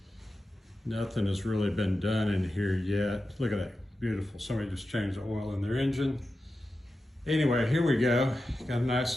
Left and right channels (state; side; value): normal; both; correlation 0.92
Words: Nothing has really been done in here yet. Look at that, beautiful. Somebody just changed the oil in their engine. Anyway, here we go. Got a